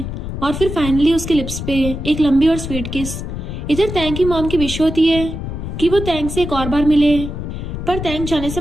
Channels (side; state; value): left; noise; rumble, 6 dB below the sound